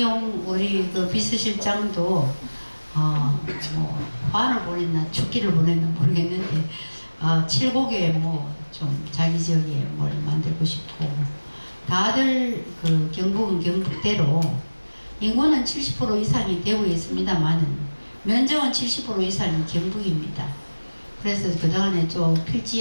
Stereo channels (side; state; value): both; inverted; correlation -1.00